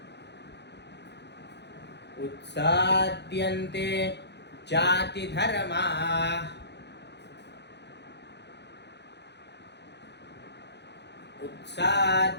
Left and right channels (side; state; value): right; late; 0.50 ms